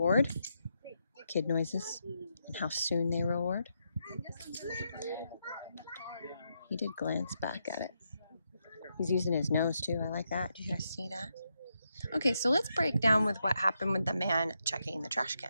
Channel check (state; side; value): inverted; both; correlation -0.82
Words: kid noises and how soon they reward. He did glance back at it. He's using his nose too. I like that. Did you guys see that? Okay, so let's break down with what happened with the man checking the trash